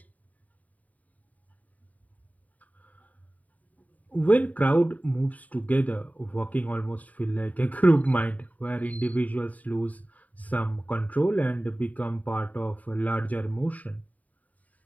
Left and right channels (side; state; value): right; late; 0.072 ms